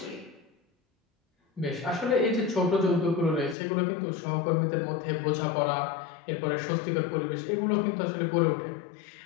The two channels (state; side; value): drops out; right; at 3.6 s